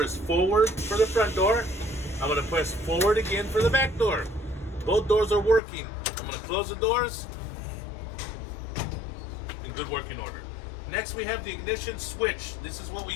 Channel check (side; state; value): right; drops out; at 5.6 s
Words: forward for the front door. I'm going to press forward again for the back door. Both doors are working. I'm going to close the doors in good working order. Next, we have the ignition switch. This is what we